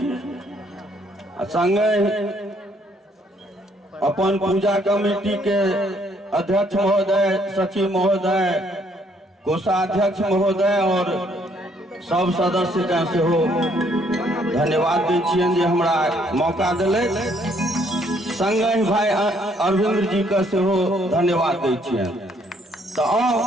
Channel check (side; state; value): both; normal; correlation 0.67